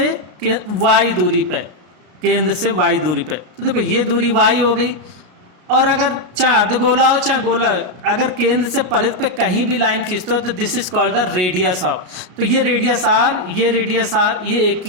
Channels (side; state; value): left; late; 33 ms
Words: वाई दूरी पे, केंद्र से वाई दूरी पे, तो देखो ये दूरी वाई हो गई। और अगर चाहे अर्धगोला हो चाहे गोला, अगर केंद्र से परिध पे कहीं भी लाइन खींचते हो तो this is called the radius of. तो ये रेडियस आर, ये रेडियस आर, ये एक